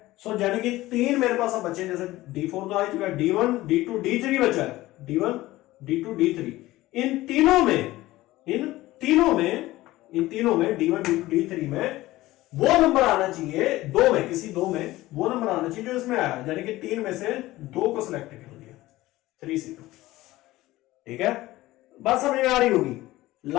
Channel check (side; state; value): right; quieter; 17.5 dB